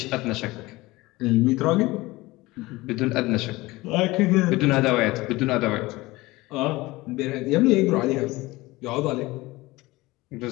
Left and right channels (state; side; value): quieter; right; 20.4 dB